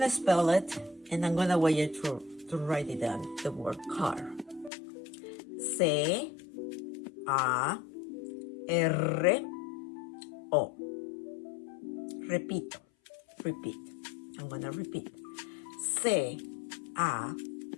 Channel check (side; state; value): right; drops out; at 4.7 s